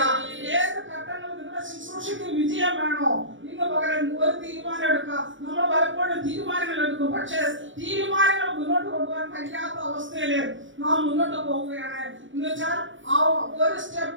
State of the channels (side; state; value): left; late; 0.56 ms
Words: ഏത് ഘട്ടങ്ങളിൽ നിങ്ങളുടെ ശുശ്രൂഷയ്ക്ക് വിജയം വേണോ, ഇന്ന് പകരം ഒരു തീരുമാനം എടുക്കുക. നമ്മൾ പലപ്പോഴും തീരുമാനങ്ങൾ എടുക്കും, പക്ഷെ തീരുമാനങ്ങൾ മുന്നോട്ട് കൊണ്ടുപോകാൻ കഴിയാത്ത അവസ്ഥയില് നാം മുന്നോട്ട് പോവുകയാണ്. എന്ന് വെച്ചാൽ ആ ഒരു